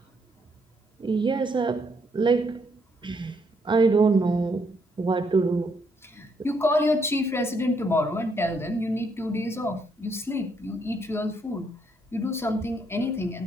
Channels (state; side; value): normal; both; correlation 0.73